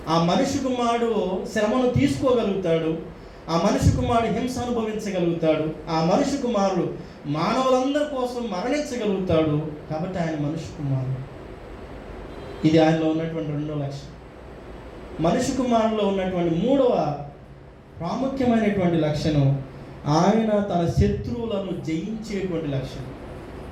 ఆ మనుష్య కుమారుడు శ్రమను తీసుకోగలుగుతాడు, ఆ మనుష్య కుమారుడు హింస అనుభవించగలుగుతాడు, ఆ మనుష్య కుమారుడు మానవులందరి కోసం మరణించగలుగుతాడు. కాబట్టి ఆయన మనుష్య కుమారుడు. ఇది ఆయనలో ఉన్నటువంటి 2వ లక్షణం. మనుష్య కుమారులో ఉన్నటువంటి 3వ ప్రాముఖ్యమైనటువంటి లక్షణం, ఆయన తన శత్రువులను జయించేటువంటి లక్షణం.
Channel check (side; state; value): both; identical; correlation 1.00